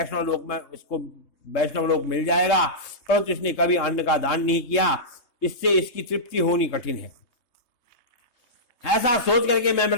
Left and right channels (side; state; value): right; late; 3.2 ms